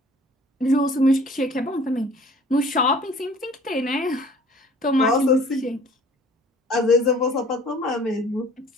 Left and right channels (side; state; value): both; normal; correlation 0.51